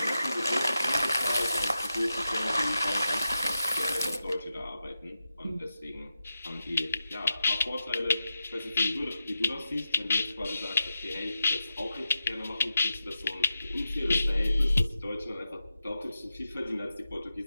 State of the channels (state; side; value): inverted; both; correlation -0.89